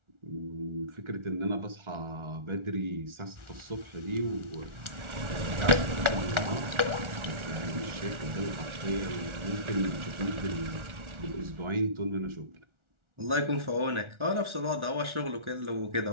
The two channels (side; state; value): left; late; 1.4 ms